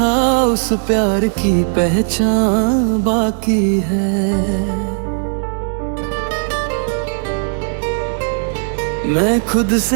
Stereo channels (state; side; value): silent; left; digital silence